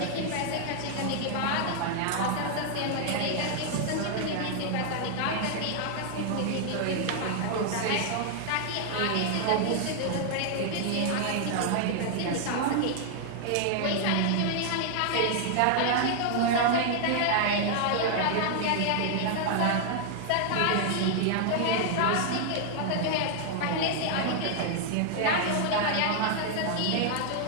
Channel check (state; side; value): different; both; correlation 0.00